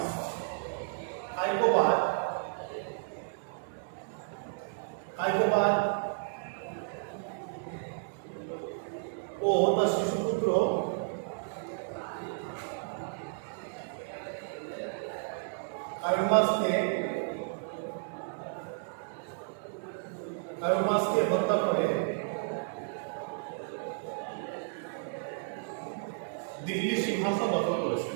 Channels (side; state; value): left; silent; digital silence